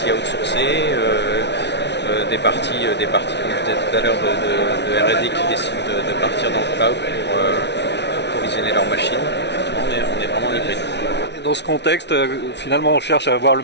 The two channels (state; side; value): late; right; 0.50 ms